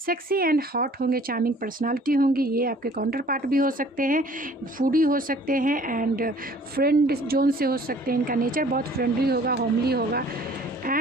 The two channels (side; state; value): both; normal; correlation 0.53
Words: एंड हॉट होंगे, चार्मिंग पर्सनालिटी होंगी, ये आपके काउंटर पार्ट भी हो सकते हैं, फूडी हो सकते हैं, एंड फ्रेंड जोन से हो सकते हैं। इनका नेचर बहुत फ्रेंडली होगा, होमली होगा,